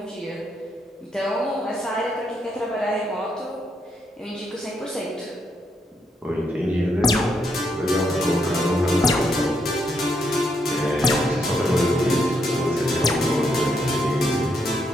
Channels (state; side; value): normal; both; correlation 0.77